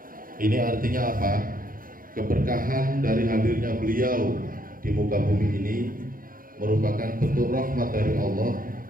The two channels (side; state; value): left; late; 0.41 ms